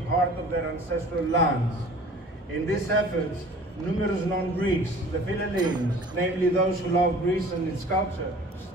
part of their ancestral lands. In these efforts, numerous non-Greeks, the Philhellenes, namely those who love Greece and its culture,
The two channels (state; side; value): normal; both; correlation 0.46